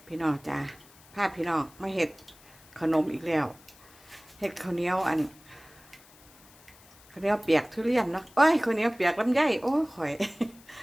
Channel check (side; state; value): left; noise; hiss, 25 dB below the sound